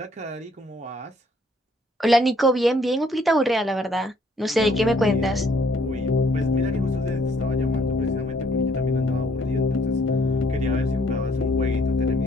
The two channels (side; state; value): both; normal; correlation 0.65